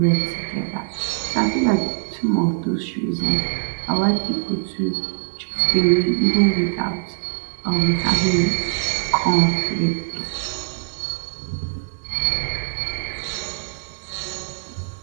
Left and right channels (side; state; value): left; silent; 64 dB below the other